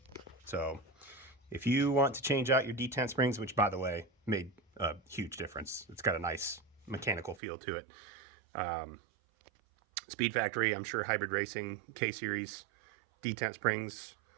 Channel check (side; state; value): left; drops out; at 7.4 s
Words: So if you want to change out your detent springs, which by the way made a huge difference, it's got a nice mechanical feel to it. Speed Factory, I'm sure Hybrid Racing K-Series detent springs